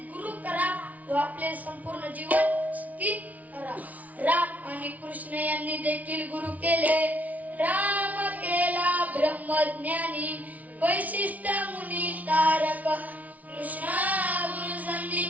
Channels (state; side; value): late; left; 0.072 ms